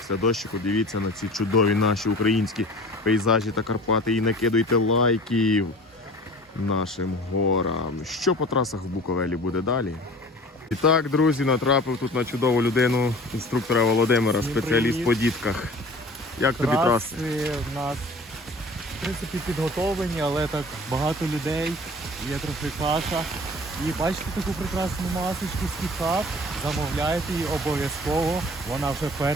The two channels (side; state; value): both; normal; correlation 0.43